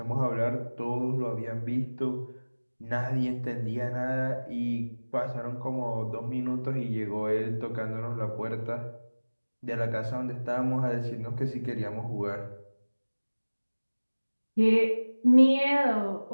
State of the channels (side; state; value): both; inverted; correlation -1.00